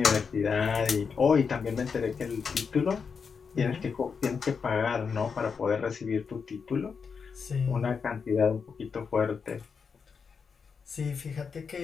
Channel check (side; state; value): right; quieter; 5.8 dB